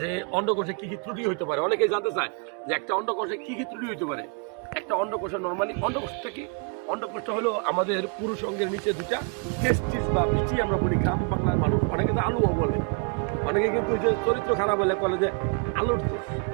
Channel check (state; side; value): quieter; left; 36.7 dB